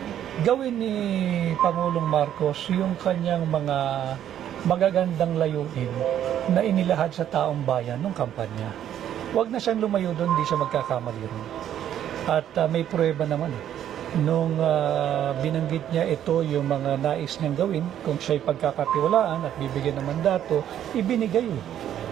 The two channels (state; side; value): quieter; left; 10.6 dB